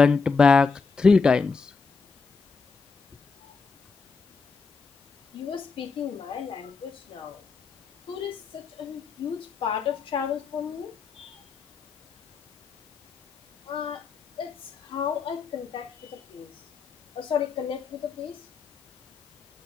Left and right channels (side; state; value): right; quieter; 4.8 dB